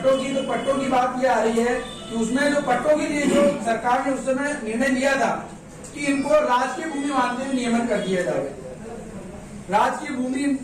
की, तो पट्टों की बात ये आ रही है कि उसमें जो पट्टों के लिए जो सरकार ने उस समय निर्णय लिया था कि इनको राजकीय भूमि मानते हुए नियमन कर दिया जाए। राजकीय भूमि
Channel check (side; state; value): both; identical; correlation 1.00